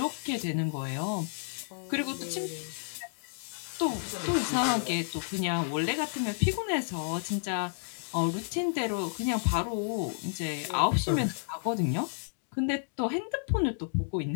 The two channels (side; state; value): right; silent; digital silence